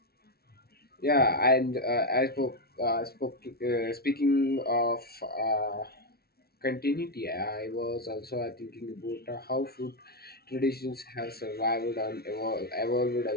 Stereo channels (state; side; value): late; right; 0.45 ms